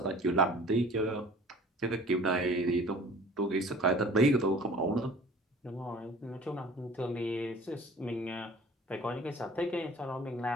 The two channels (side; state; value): both; normal; correlation 0.47